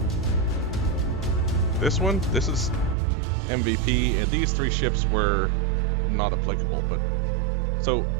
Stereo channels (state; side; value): drops out; left; at 3.0 s